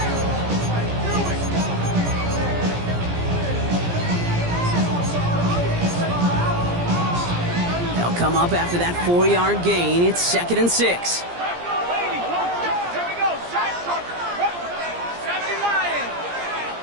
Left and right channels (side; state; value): left; late; 17 ms